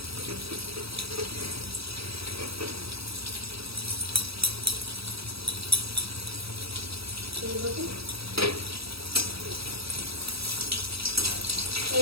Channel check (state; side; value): late; left; 0.77 ms